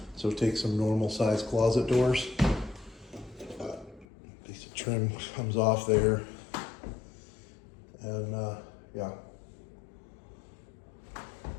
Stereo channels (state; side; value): drops out; right; at 4.0 s